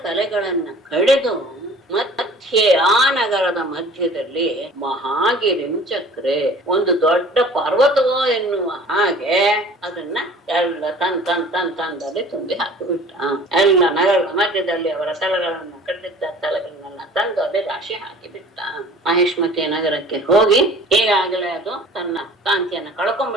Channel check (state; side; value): normal; both; correlation 0.46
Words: ತಲೆಗಳನ್ನ ಕಡಿದು ಮಧ್ಯೆ ಆ ನಗರದ ಮಧ್ಯದಲ್ಲಿ ಮಹಾಗಿರಿಂ ಚಕ್ರೆ, ಒಂದು ದೊಡ್ಡ ಪರ್ವತವೋ ಎನ್ನುವ ಹಾಗೆ ಅದನ್ನ ಎಲ್ಲ ತಂದಲ್ಲಿ ತುಂಬಿ ಹಾಕಿಬಿಟ್ಟ. ಎಲ್ಲ ನಗರದ ಮಧ್ಯದಲ್ಲಿ ಅವರ ತಲೆಗಳನ್ನ ಕಡಿದಿದ್ದ ತಲೆಗಳನ್ನೆಲ್ಲ ತಂದು ಅದೇ ರಾಶಿ ಹಾಕಿಬಿಟ್ಟ. ಮಹೇಶ್ಮತಿ ನಗರಕ್ಕೆ ಹೋಗಿ ಈಗಾಗಲೇ ಅದು ತನ್ನ ಕಾಂತಿಯನ್ನ